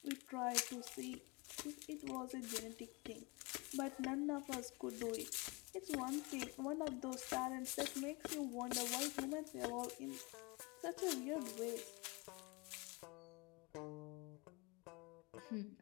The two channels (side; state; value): right; quieter; 26.4 dB